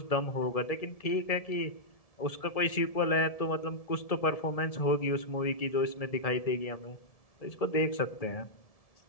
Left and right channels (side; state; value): right; late; 1.7 ms